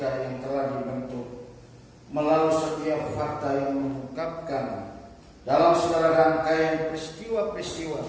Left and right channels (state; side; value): identical; both; correlation 1.00